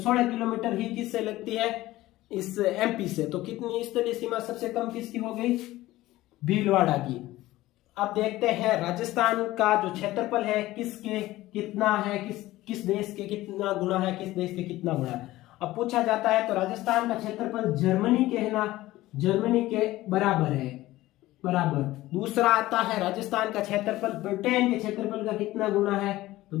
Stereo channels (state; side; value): quieter; right; 16.9 dB